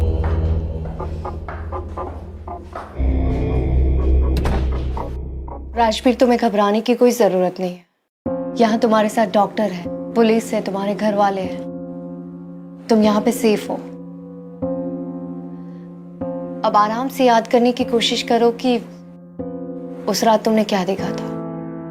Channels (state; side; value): identical; both; correlation 1.00